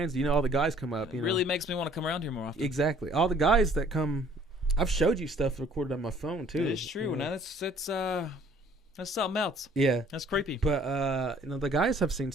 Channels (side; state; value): both; normal; correlation 0.57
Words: all the guys come up. It really makes me want to come around here more often. Exactly, all the guys that come. I've showed you stuff recorded on my phone too. It's true. Now that's something else. Yeah, that's creepy. But the guys have seen